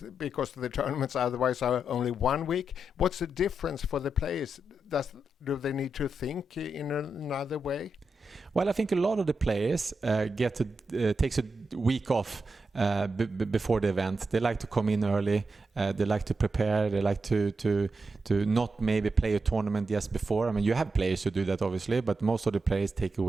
because the tournaments otherwise are only 1 week. What's the difference for the players? Do they need to think in another way? Well, I think a lot of the players takes a week off before the event. They like to come in early. They like to prepare. They like to not maybe play a tournament just before. I mean, you have players who do that, obviously, but most of the players take a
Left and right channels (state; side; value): normal; both; correlation 0.86